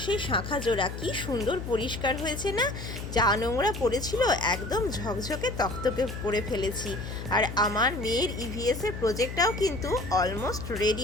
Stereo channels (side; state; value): left; noise; hum, 8 dB below the sound